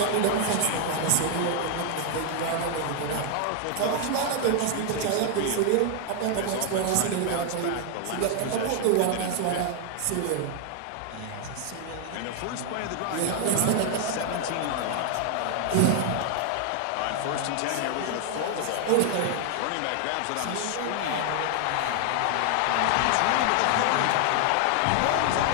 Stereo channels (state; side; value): different; both; correlation 0.00